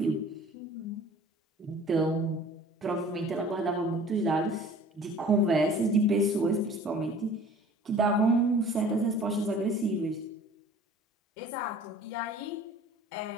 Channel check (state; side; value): normal; both; correlation 0.48